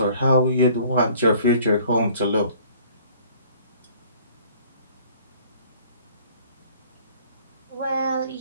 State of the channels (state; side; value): inverted; both; correlation -0.54